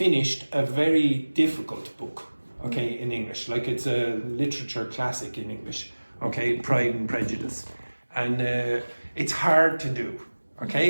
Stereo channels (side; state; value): both; inverted; correlation -1.00